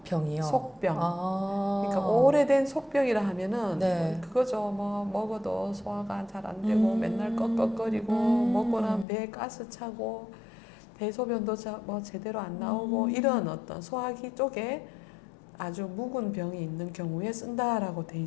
속병. 아. 그러니까 오래된 속병이라 하면은 네. 그거죠. 뭐 먹어도 소화가 잘 안 되고 맨날 꺽꺽거리고 먹고 나면 배에 가스 차고 대소변도 뭐 제대로 안 나오고 이런 어떤 소화기 쪽에 아주 묵은 병이 있는 경우에 쓴다라고 돼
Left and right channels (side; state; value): right; drops out; at 9.1 s